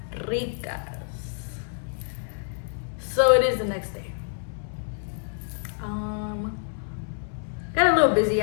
ricas. So it is the next day. Got a little busy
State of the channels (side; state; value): right; silent; 60 dB below the other